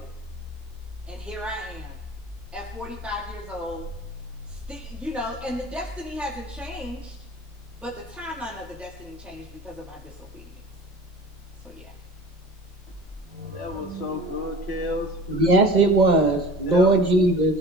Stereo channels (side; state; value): both; normal; correlation 0.41